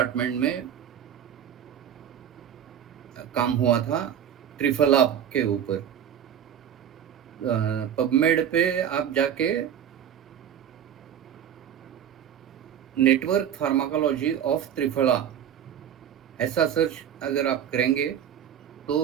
में काम हुआ था त्रिफला के ऊपर। पबमेड पे आप जाके नेटवर्क फार्माकोलॉजी ऑफ त्रिफला ऐसा सर्च अगर आप करेंगे तो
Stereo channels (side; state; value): left; quieter; 9.3 dB